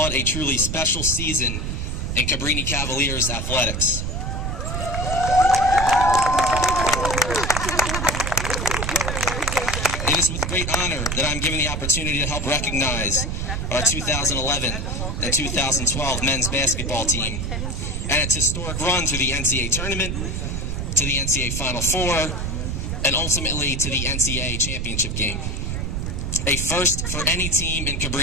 a truly special season in Cabrini Cavaliers athletics. It is with great honor that I'm given the opportunity to help recognize our 2011 and 2012 men's basketball team and its historic run through the NCAA tournament, to the NCAA Final Four, and ultimately to the NCAA championship game. A first for any team in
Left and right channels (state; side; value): noise; right; rumble, 2 dB below the sound